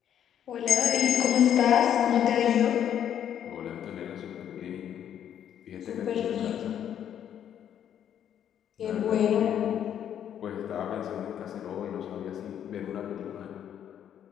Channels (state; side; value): quieter; right; 9.7 dB